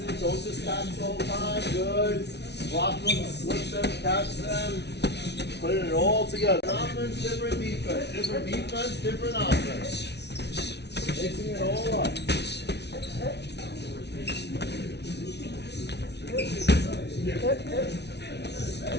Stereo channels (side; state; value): right; late; 0.50 ms